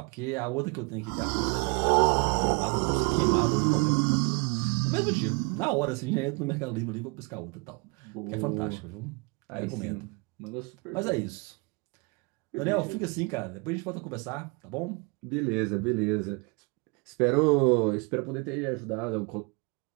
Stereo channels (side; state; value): left; quieter; 30.3 dB